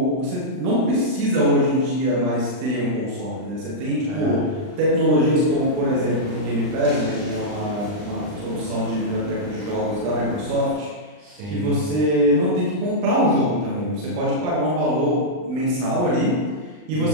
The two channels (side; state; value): left; late; 39 ms